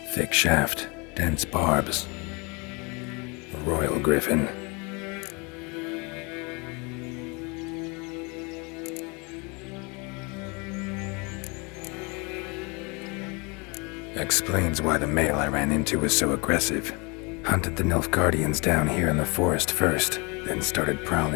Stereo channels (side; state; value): right; quieter; 29.7 dB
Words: Thick shaft, dense barbs. A royal Griffin. Explains why the male I ran into was so aggressive. Hunted the Nilfgaardians down here in the forest first, then started